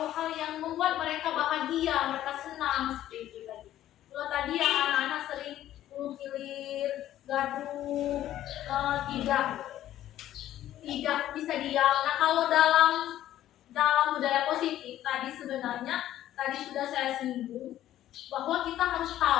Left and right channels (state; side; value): quieter; right; 12.8 dB